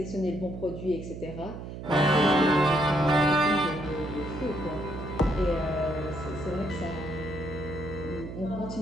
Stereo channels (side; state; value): right; noise; hum, 9 dB below the sound